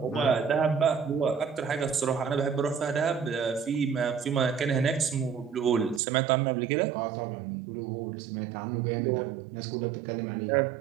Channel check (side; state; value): left; drops out; at 6.0 s